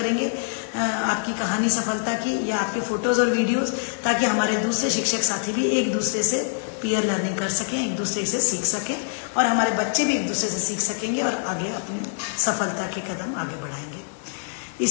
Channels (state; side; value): silent; right; digital silence